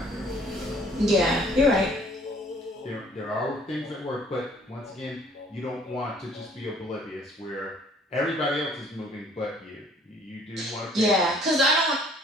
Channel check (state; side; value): normal; both; correlation 0.58